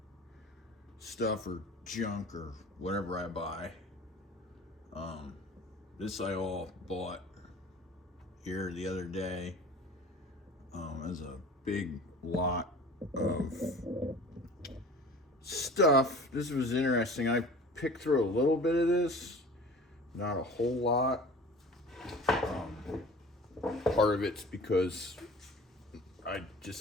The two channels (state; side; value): normal; both; correlation 0.42